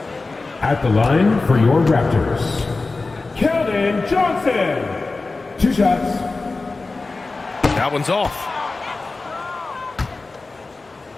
At the line for your Raptors, Keldon Johnson. 2 shots. That one's off.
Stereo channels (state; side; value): quieter; right; 3.6 dB